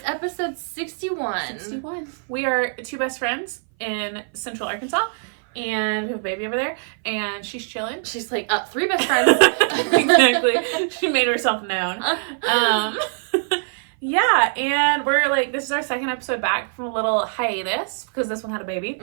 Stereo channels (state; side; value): silent; left; 58 dB below the other